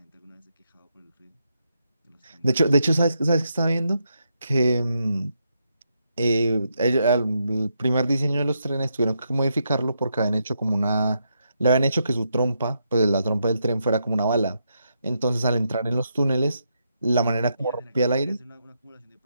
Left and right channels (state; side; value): inverted; both; correlation -0.81